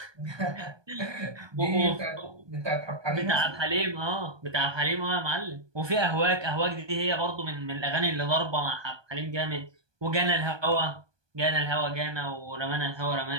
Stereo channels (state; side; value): late; left; 1.2 ms